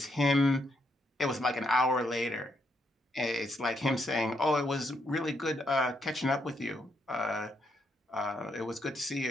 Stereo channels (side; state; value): both; normal; correlation 0.77